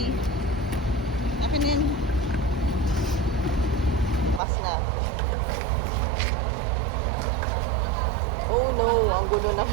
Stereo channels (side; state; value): left; drops out; at 4.4 s